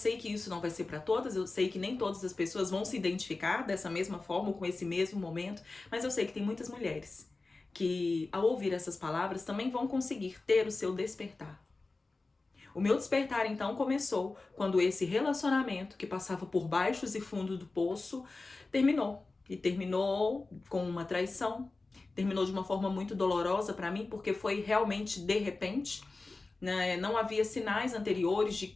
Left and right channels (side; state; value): right; quieter; 3.5 dB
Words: que isso não vai ser para todas, eu sei que nem todas as pessoas vão se identificar dessa mesma forma, com esse mesmo momento, mas eu sei que tem muitas mulheres que, ao ouvir essas palavras, também vão conseguir ter o seu despertar. O meu despertar, então, começou quando esse relacionamento, que passava por baixos e fundos do poço, terminou. E terminou com uma traição, terminou de uma forma muito dolorosa para mim, porque foi realmente de repente, né? Não havia sinais anteriores de